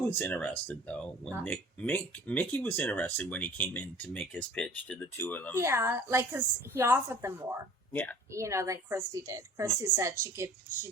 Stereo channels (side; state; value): both; normal; correlation 0.48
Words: interested though when Mickey was interested when he came in to make his pitch to the two of them. Yeah, because he offered them more. Yeah. Than Christy did. Christy said